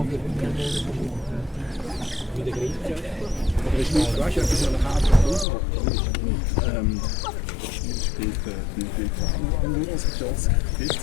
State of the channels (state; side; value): drops out; right; at 5.5 s